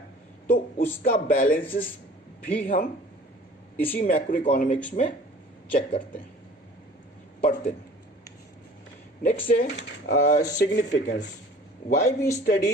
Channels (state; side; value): normal; both; correlation 0.47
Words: तो उसका बैलेंसेस भी हम इसी मैक्रो इकोनॉमिक्स में चेक करते हैं, पढ़ते हैं। नेक्स्ट है significance. Why we